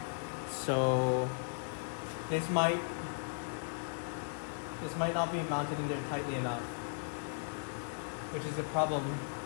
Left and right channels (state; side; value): silent; right; digital silence